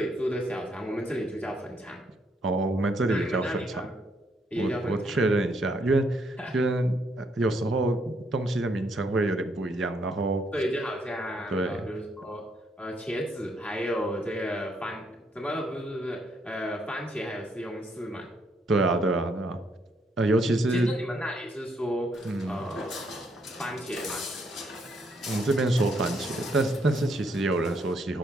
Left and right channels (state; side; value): normal; both; correlation 0.73